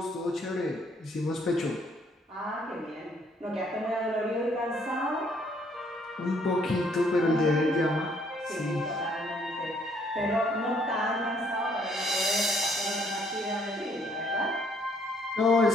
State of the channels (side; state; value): both; normal; correlation 0.66